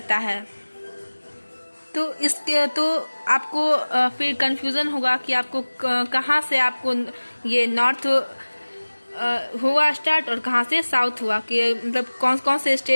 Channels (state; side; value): inverted; both; correlation -1.00